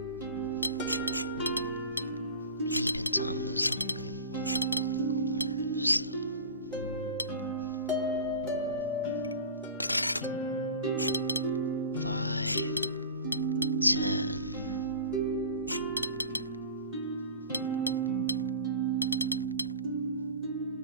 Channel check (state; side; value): inverted; both; correlation -0.37